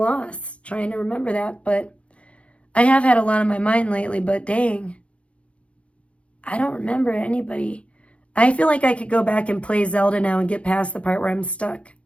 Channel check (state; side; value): late; right; 0.062 ms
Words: trying to remember that, but I have had a lot on my mind lately, but dang, I don't remember anybody. I feel like I could go back and play Zelda now and get past the part where I'm stuck.